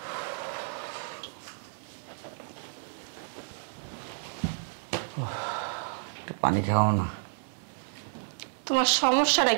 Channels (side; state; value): left; silent; 57 dB below the other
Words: পানি খাও না। তোমার সমস্যাটা